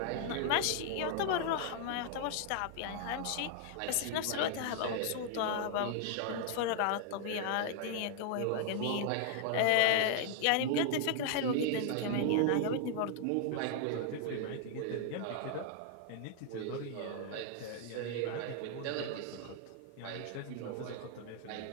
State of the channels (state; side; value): different; both; correlation 0.00